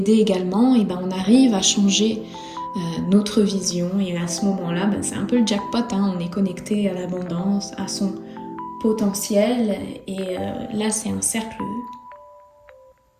également, et on arrive à changer notre vision, et à ce moment-là, c'est un peu le jackpot, on est connecté à l'abondance, à son potentiel, et là c'est un cercle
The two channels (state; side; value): identical; both; correlation 1.00